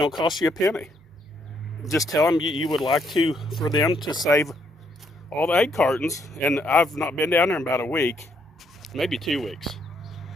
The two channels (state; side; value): normal; both; correlation 0.72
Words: cost you a penny. Just tell them you would like for them to save all the egg cartons. And I've not been down there in about a week, maybe 2 weeks.